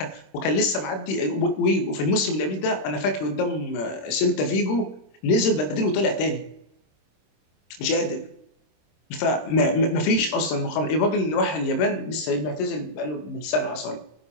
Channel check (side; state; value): right; late; 26 ms